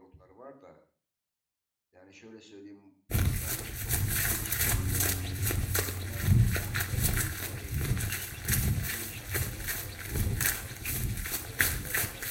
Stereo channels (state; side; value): identical; both; correlation 1.00